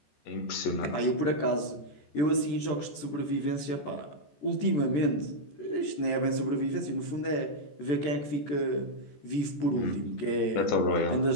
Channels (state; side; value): late; right; 14 ms